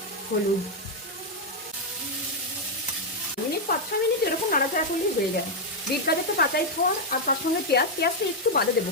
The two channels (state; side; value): normal; both; correlation -0.01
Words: হলুদ, 5-6 মিনিট এরকম নাড়াচাড়া করলেই হয়ে যায়। বিট গাজরটা কাঁচাই খাওয়া, আর তার সঙ্গে পেঁয়াজটা একটু বাদে দেবো।